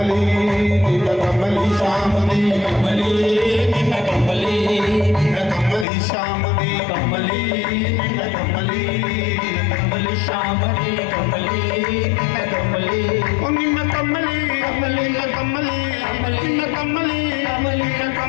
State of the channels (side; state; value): right; drops out; at 5.9 s